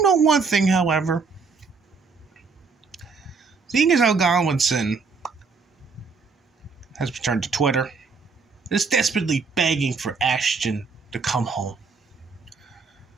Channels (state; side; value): quieter; left; 4.8 dB